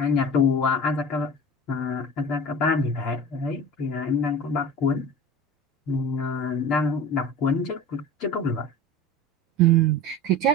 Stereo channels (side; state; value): both; normal; correlation 0.35